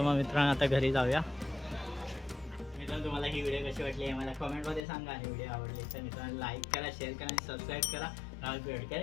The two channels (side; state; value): right; drops out; at 4.8 s